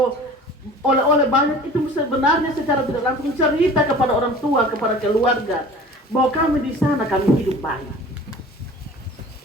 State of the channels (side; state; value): both; normal; correlation 0.43